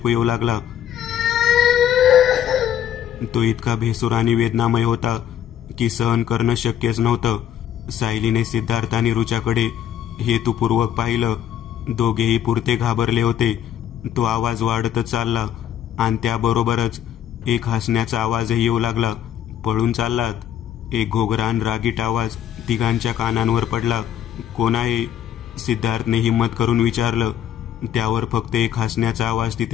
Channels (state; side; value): quieter; right; 10.5 dB